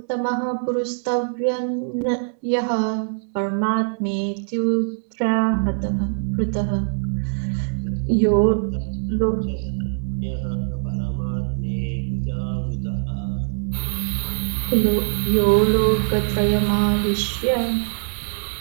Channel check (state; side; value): silent; left; digital silence